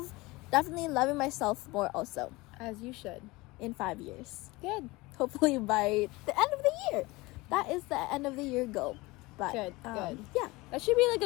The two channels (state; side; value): quieter; right; 22.1 dB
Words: definitely loving myself more also. As you should. In 5 years. Good. Hopefully by the end of the year. That is the end of the year goal. But, good. Yeah. That should be